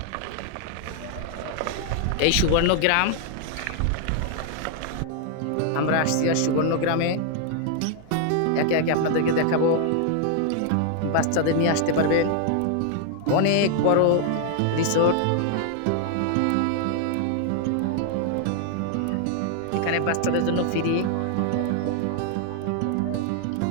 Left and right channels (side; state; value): both; different; correlation 0.00